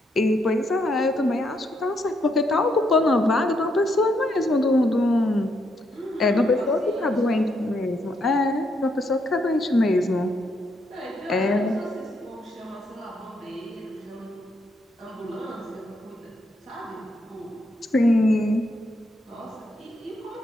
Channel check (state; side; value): normal; both; correlation 0.76